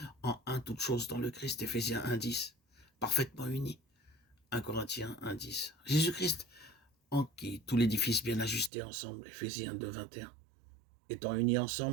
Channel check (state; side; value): drops out; left; at 8.7 s